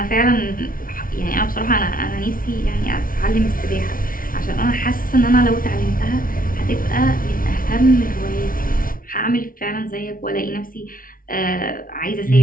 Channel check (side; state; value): right; late; 0.41 ms